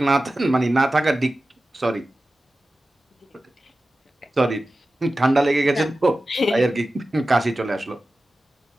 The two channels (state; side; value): normal; both; correlation 0.95